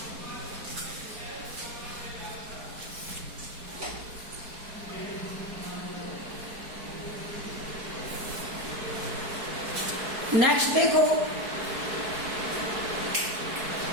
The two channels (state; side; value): late; left; 4.6 ms